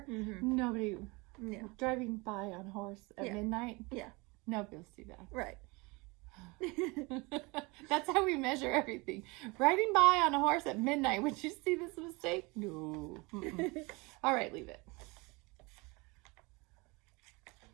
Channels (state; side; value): quieter; left; 26.3 dB